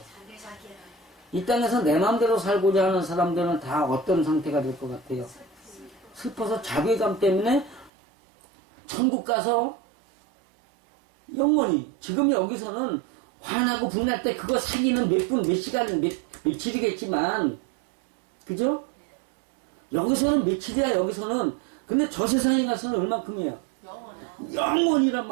이 땅에서 내 마음대로 살고자 하는 사람들은 다 어떤 상태가 될 것 같아요? 슬퍼서 자괴감 때문에 천국 가서 영원히, 지금 여기서는 화나고 분날 때 그거 사기는 몇 분, 몇 시간, 며칠이겠지만, 그죠? 여기서는 며칠이야, 여기서는. 근데 저 세상에 가서는 얼만큼이에요? 영원이란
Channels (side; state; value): left; drops out; at 7.9 s